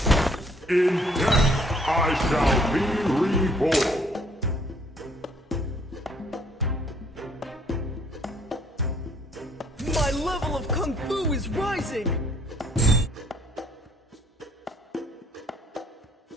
In death I shall be reborn. My level of Kung Fu is rising!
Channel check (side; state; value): both; normal; correlation 0.64